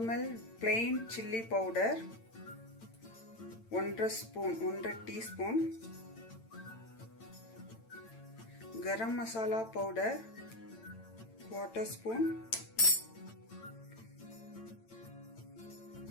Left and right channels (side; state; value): right; late; 8.9 ms